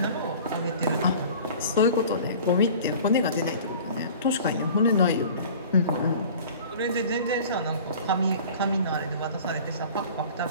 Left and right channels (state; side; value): inverted; both; correlation -0.43